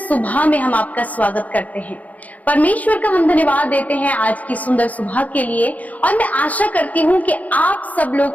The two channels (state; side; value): late; right; 0.075 ms